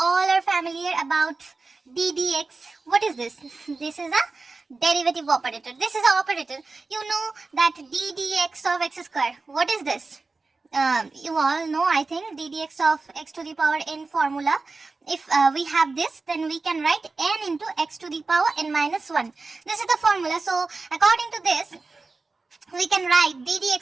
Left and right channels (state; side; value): quieter; left; 3.9 dB